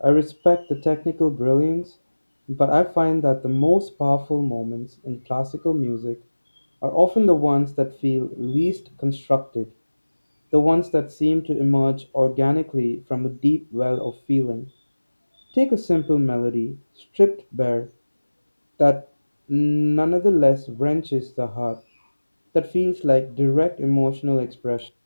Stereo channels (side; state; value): both; inverted; correlation -1.00